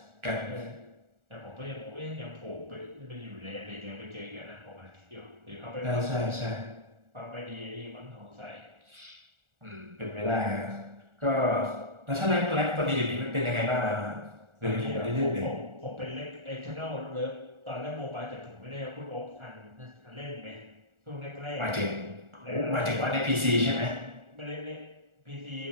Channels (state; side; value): late; left; 1.4 ms